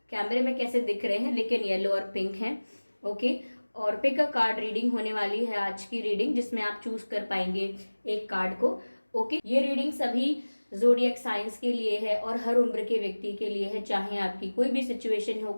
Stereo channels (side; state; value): both; inverted; correlation -1.00